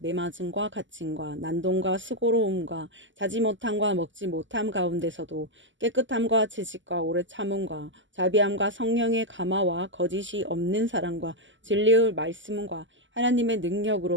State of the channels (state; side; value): late; left; 0.55 ms